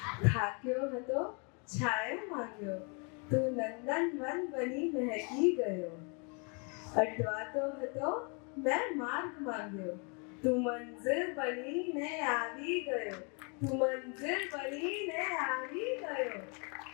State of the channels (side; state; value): right; quieter; 34.9 dB